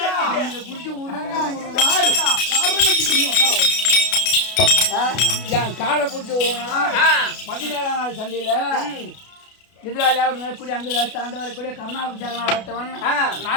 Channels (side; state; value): right; late; 33 ms